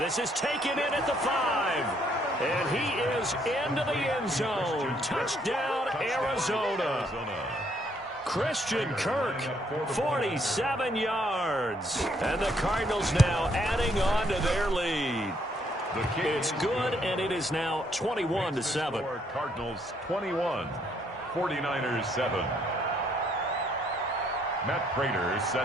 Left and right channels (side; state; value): both; normal; correlation 0.69